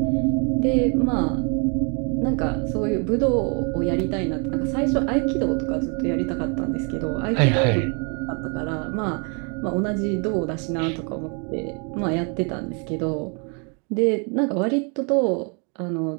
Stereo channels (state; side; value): quieter; left; 36.5 dB